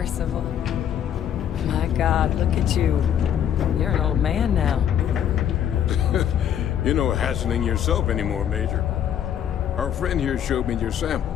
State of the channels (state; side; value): quieter; right; 9.6 dB